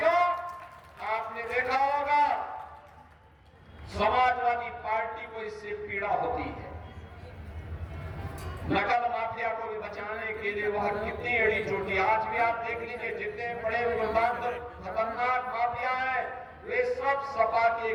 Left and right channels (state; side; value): identical; both; correlation 1.00